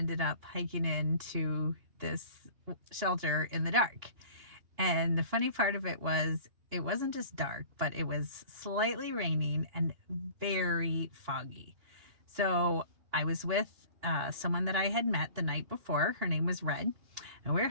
up hiking into this shelter in the dark. And the funny part of it was, it wasn't just dark, but it was slightly raining and very foggy. So I was with someone that I had met the night before. Her name was Red. And we were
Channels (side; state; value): left; late; 2.9 ms